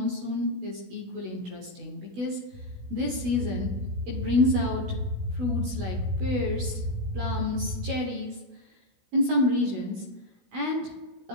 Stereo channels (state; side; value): late; left; 16 ms